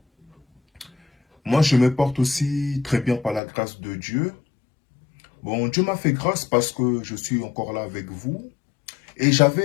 Moi, je me porte aussi très bien par la grâce de Dieu. Bon, Dieu m'a fait grâce parce que je suis encore là avec vous. Et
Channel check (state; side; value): drops out; right; at 3.4 s